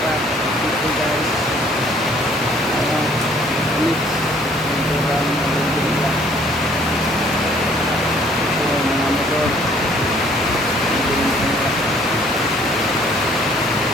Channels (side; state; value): both; normal; correlation 0.60